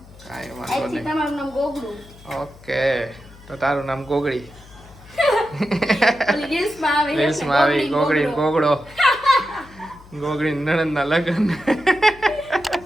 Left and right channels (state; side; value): noise; left; hum, 22 dB below the sound